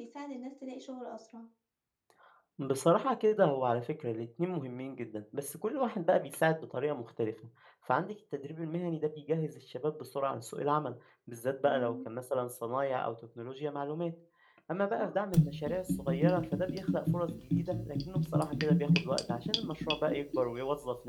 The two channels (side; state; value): both; identical; correlation 1.00